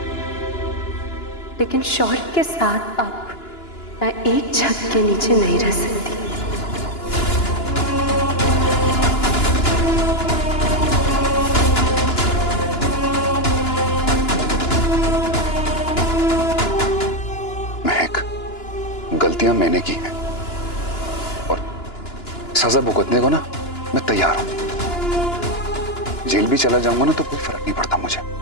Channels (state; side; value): late; right; 2.9 ms